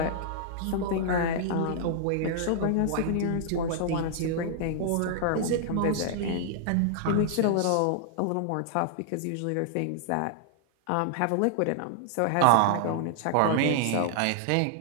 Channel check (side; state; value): both; different; correlation -0.01